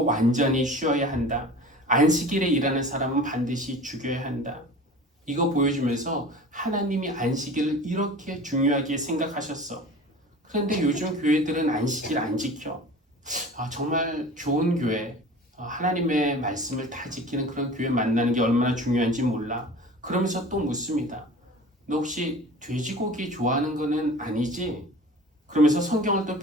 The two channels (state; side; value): normal; both; correlation 0.39